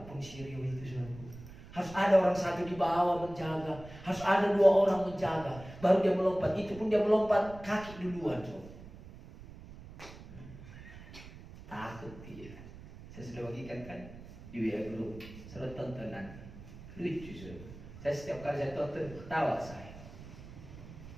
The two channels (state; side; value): noise; right; rumble, 16 dB below the sound